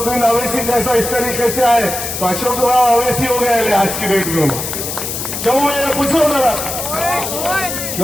अवैसी जैसा इस तरीके से आए तो अशोक राव अवैसी हो गए आज की डेट में। क्यों मैं पूछो जरा,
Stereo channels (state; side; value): noise; left; hiss, 5 dB below the sound